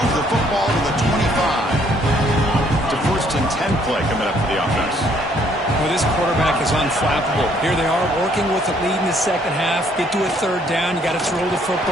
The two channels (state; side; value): normal; both; correlation 0.65